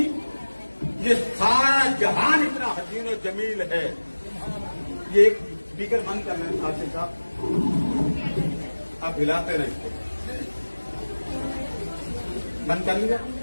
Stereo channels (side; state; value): both; inverted; correlation -1.00